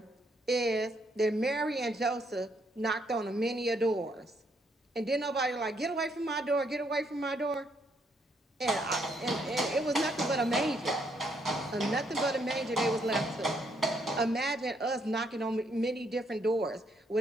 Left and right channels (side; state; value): both; normal; correlation 0.72